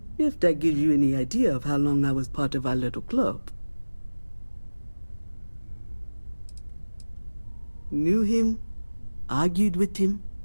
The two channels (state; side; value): inverted; both; correlation -1.00